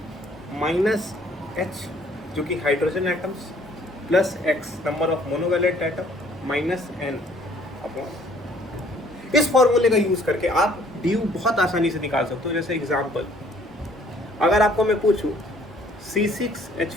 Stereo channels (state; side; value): normal; both; correlation 0.60